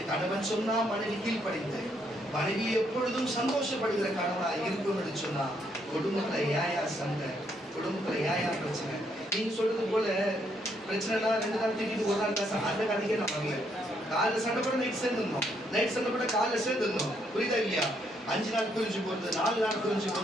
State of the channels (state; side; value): normal; both; correlation 0.73